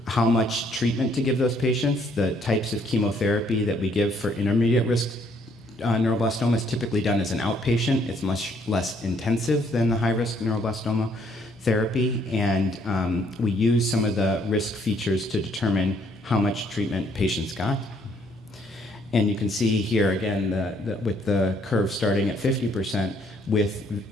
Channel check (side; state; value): both; normal; correlation 0.67